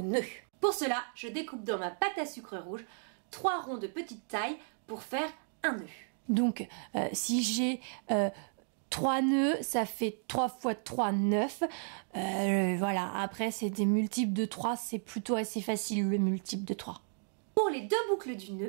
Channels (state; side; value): silent; left; 55 dB below the other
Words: nœuds. Pour cela, je découpe dans ma pâte à sucre rouge 3 ronds de petite taille pour faire un nœud. Donc, si j'ai 3 nœuds, ça fait 3 fois 3, 9. Voilà, après, c'est des multiples de 3. C'est plutôt assez facile, le multiple de 3. Pour les 2 boucles du